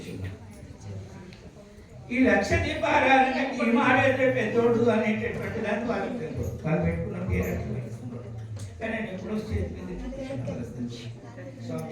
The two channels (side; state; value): both; identical; correlation 1.00